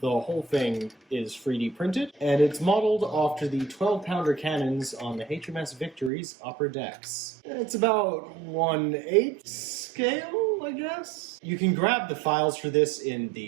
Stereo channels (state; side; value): drops out; left; at 6.1 s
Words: whole thing is 3D printed, and it's modeled after the 12-pounder cannons on the HMS Victory's upper decks. It's about 1/8 scale, I guess? You can grab the files for this in